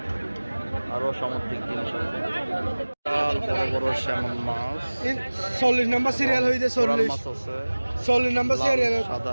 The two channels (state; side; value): inverted; both; correlation -1.00